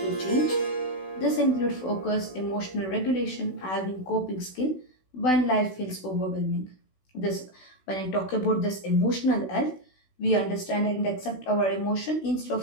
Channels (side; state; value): right; late; 16 ms